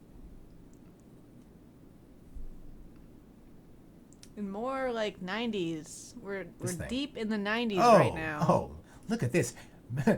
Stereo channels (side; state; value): both; identical; correlation 1.00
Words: In more like 90s. We're deep in the 90s right now. Oh, look at this.